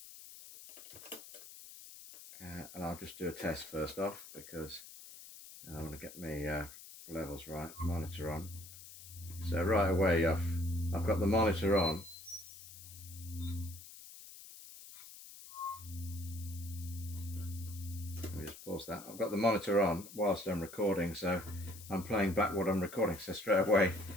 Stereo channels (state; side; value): noise; left; hiss, 16 dB below the sound